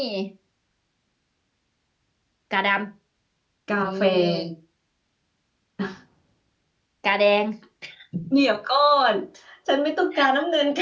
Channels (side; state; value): both; identical; correlation 1.00